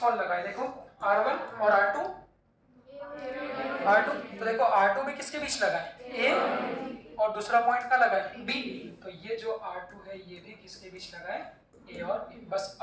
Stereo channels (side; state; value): both; identical; correlation 1.00